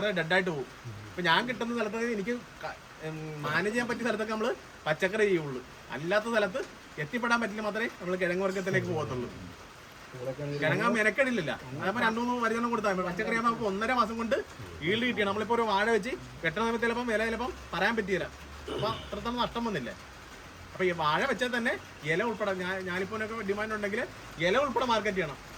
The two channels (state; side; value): identical; both; correlation 1.00